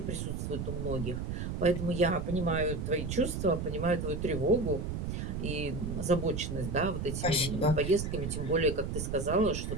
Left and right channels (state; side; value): noise; right; rumble, 3 dB below the sound